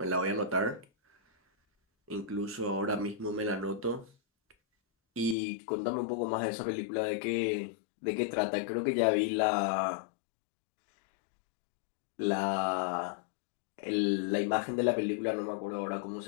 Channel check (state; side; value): drops out; right; at 5.4 s